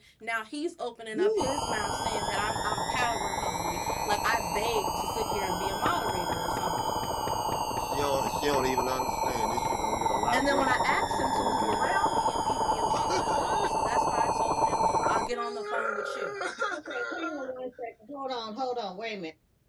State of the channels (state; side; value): identical; both; correlation 1.00